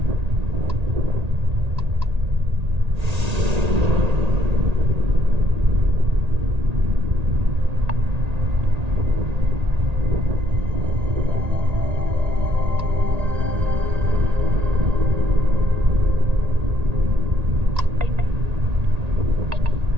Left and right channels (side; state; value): left; late; 1.8 ms